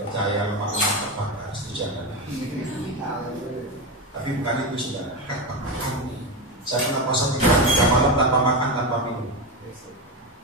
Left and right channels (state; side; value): normal; both; correlation 0.15